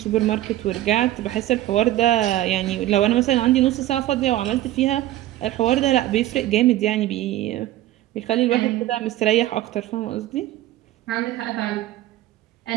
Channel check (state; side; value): quieter; left; 14.7 dB